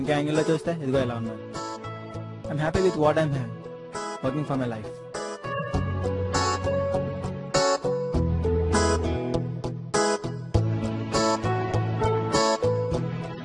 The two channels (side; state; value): both; identical; correlation 1.00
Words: ఇంకో యాంగిల్ లో చూస్తే ఇదిగో ఎలా ఉన్నాను. I'm happy with what I'm working for my life.